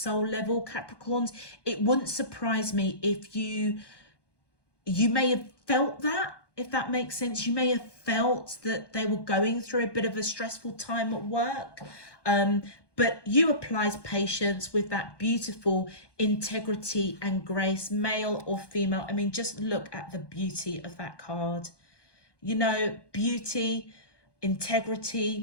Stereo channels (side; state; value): right; late; 1.2 ms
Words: level, Capricorns, it wouldn't surprise me if you may have felt that, if that makes sense. You may have felt that they were going through a bit of a stressful time at work. But you applies patience with that beautiful integrity and grace, male or female. I mean, just look at the beauty of that card. You know, beauty,